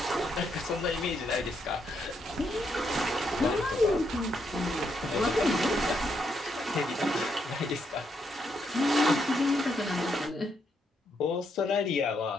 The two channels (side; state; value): both; normal; correlation 0.77